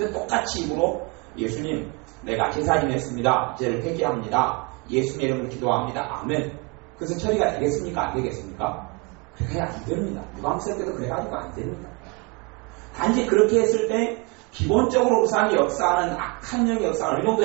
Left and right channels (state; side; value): quieter; left; 28.9 dB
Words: 똑같이 입으로 예수님 내가 제사 지냈습니다. 이제를 회개합니다. 예수님의 이름으로 기도합니다. 아멘. 그것은 처리가 되겠습니까? 안 되겠습니까? 그래야 안 됩니다. 유감스럽 때도 그래가지고 안 됩니다. 단지 그렇게 했을 때 기본적으로 우상이 역사하는 악한 영의 역사를 어느